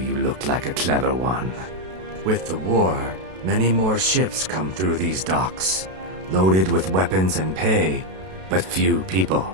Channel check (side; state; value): left; late; 32 ms